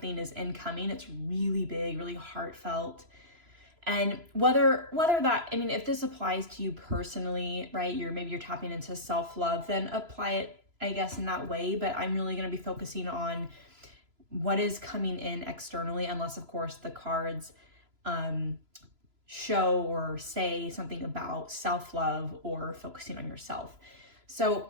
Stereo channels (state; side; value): late; left; 3.0 ms